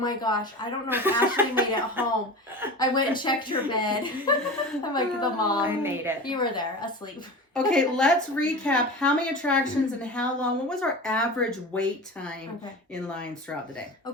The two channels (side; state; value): both; normal; correlation 0.31